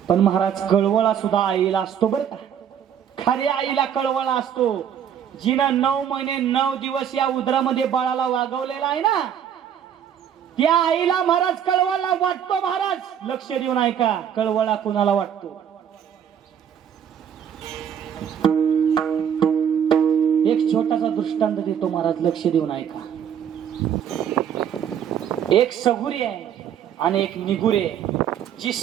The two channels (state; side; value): quieter; left; 8.8 dB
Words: पण महाराज कळवळा सुद्धा आईला असतो बरं का. खऱ्या आईला कळवळा असतो. जिनं 9 महिने 9 दिवस या उदरामध्ये बाळाला वागवलेला आहे ना, त्या आईला महाराज कळवळा वाटतो. महाराज लक्ष देऊन ऐका, कळवळा कुणाला वाटतो. एक छोटासा दृष्टांत देतो महाराज, लक्ष देऊन ऐका. एक सगुरी आहे आणि एक निगुरी आहे. जी